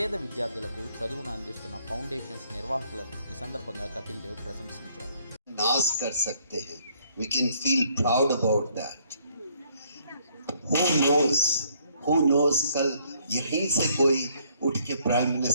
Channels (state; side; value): inverted; both; correlation -0.66